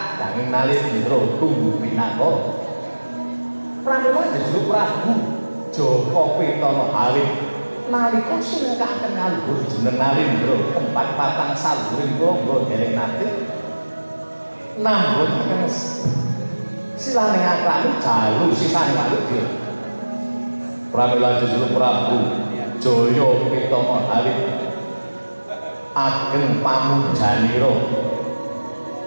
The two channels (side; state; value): both; inverted; correlation -1.00